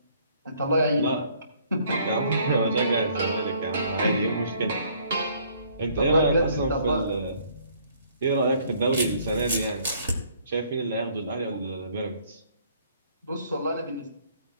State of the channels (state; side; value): inverted; both; correlation -0.62